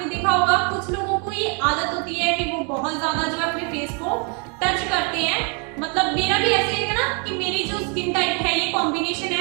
देखा होगा कुछ लोगों को ये आदत होती है कि वो बहुत ज्यादा जो है अपने फेस को टच करते हैं। मतलब मेरा भी ऐसे है ना कि मेरी जो स्किन टाइप है, ये कॉम्बिनेशन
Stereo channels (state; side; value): quieter; left; 36.7 dB